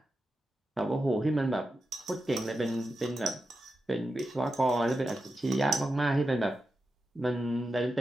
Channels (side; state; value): both; normal; correlation 0.89